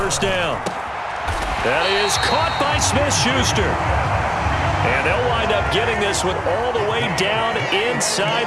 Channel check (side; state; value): both; identical; correlation 1.00